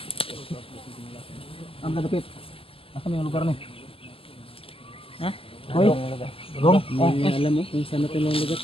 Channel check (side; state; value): right; late; 0.26 ms